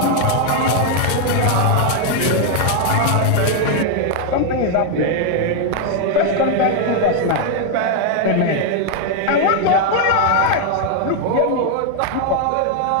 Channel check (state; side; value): different; both; correlation 0.00